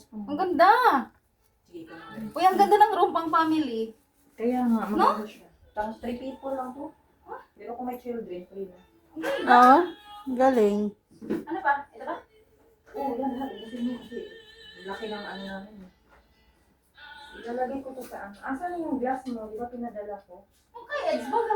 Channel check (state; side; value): identical; both; correlation 1.00